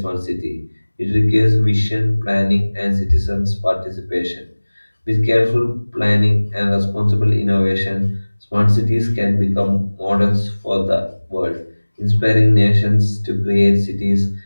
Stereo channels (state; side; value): inverted; both; correlation -1.00